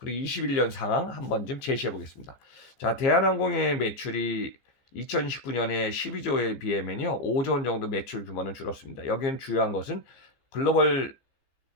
21년 상황 한번 좀 제시해 보겠습니다. 자, 대한항공의 매출이 2019년에 12조에 비하면요 5조 원 정도 매출 규모는 줄었습니다. 여기는 주요한 것은 글로벌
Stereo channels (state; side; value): late; right; 15 ms